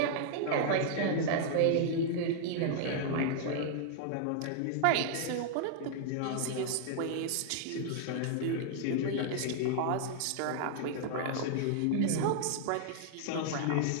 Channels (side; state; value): both; different; correlation -0.01